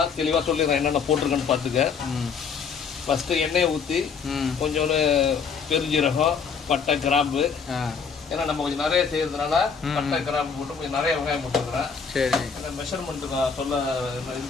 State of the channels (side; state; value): right; quieter; 5.9 dB